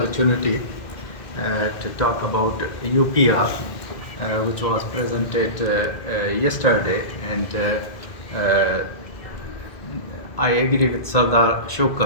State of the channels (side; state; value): right; late; 2.1 ms